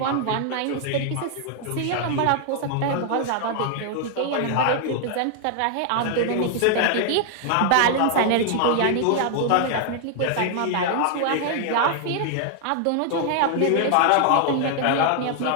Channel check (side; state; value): both; different; correlation 0.00